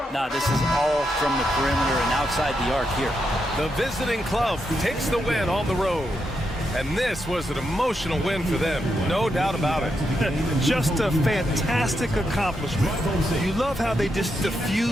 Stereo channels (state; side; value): normal; both; correlation 0.83